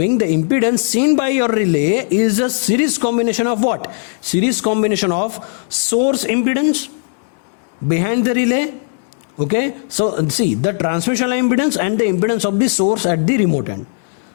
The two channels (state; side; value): silent; right; 64 dB below the other